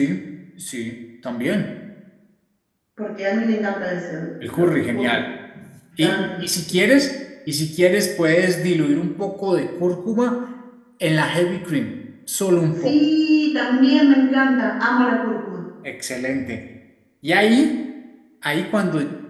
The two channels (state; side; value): identical; both; correlation 1.00